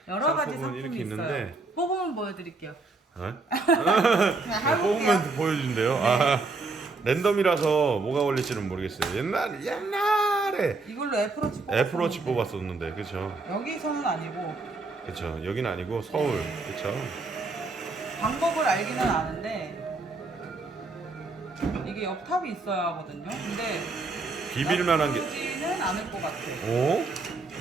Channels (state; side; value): quieter; left; 3.6 dB